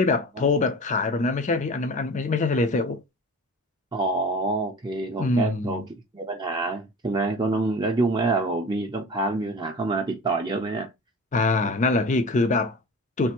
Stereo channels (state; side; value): normal; both; correlation 0.36